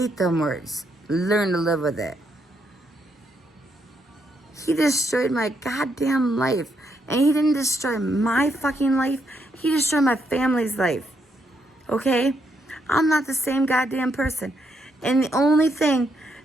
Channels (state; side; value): normal; both; correlation 0.77